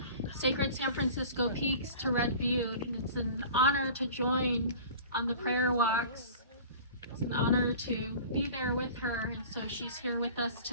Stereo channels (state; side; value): inverted; both; correlation -0.41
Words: Sacred San Francisco Peaks to Red Butte. And it's an honor to join on the prayer walks. It's an honor to be there with her. And so she's here with us